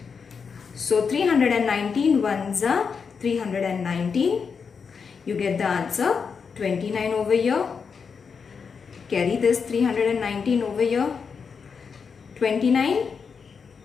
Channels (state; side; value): quieter; right; 5.8 dB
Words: So 319 ones are 319. You get the answer 29 over here. Carry this 319 over here. 29